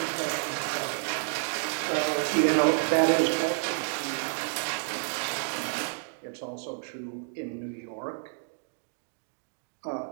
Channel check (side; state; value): left; silent; digital silence